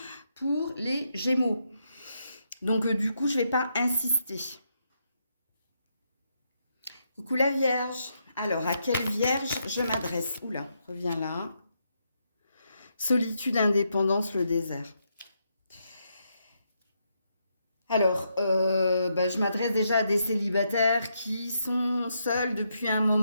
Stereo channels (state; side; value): inverted; both; correlation -0.80